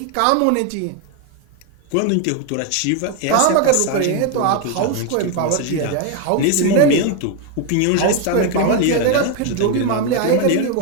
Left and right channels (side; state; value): both; different; correlation 0.01